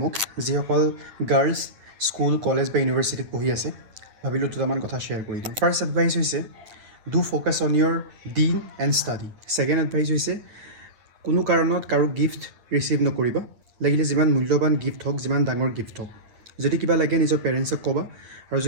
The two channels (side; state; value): left; late; 9.1 ms